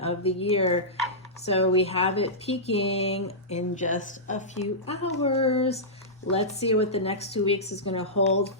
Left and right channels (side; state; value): both; normal; correlation -0.15